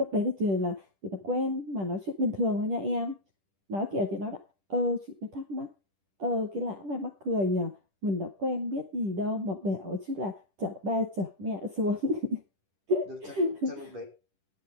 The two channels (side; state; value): left; late; 10 ms